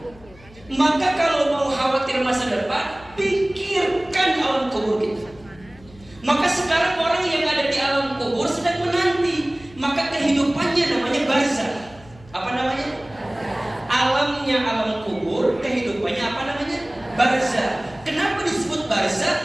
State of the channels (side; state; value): left; noise; hum, 23 dB below the sound